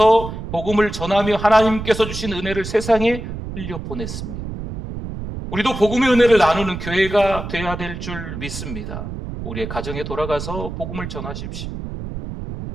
복음을 전하며 하나님께서 주신 은혜를 세상에 흘려보냈습니다. 우리도 복음의 은혜를 나누는 교회가 되어야 될 줄 믿습니다. 우리의 가정에 돌아가서 복음을 전하십시오.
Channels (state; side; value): noise; right; rumble, 8 dB below the sound